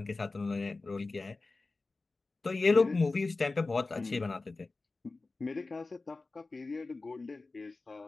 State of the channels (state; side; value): quieter; right; 3.5 dB